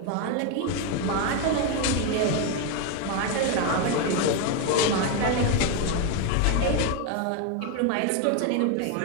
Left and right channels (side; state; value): both; different; correlation 0.02